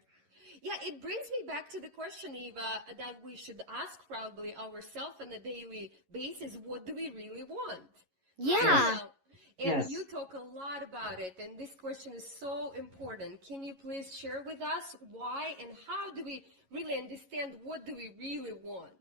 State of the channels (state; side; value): late; left; 11 ms